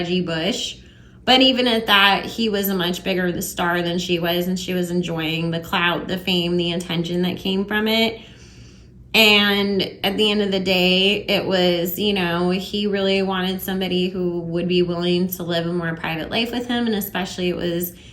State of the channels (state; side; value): identical; both; correlation 1.00